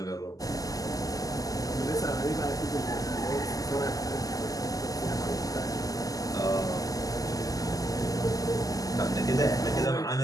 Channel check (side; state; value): right; late; 0.17 ms